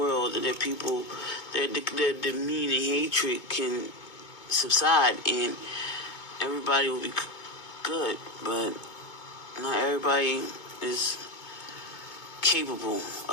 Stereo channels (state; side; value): late; right; 2.2 ms